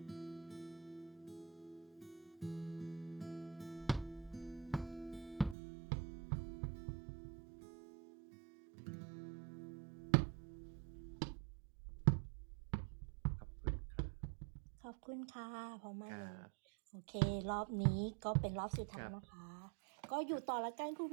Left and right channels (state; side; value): drops out; left; at 5.6 s